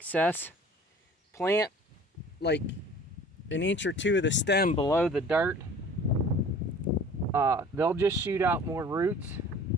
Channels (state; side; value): normal; both; correlation 0.47